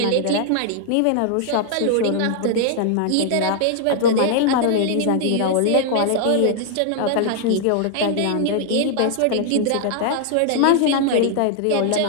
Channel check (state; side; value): different; both; correlation 0.00